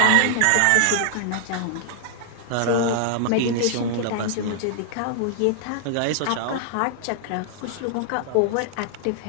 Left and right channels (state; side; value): different; both; correlation 0.00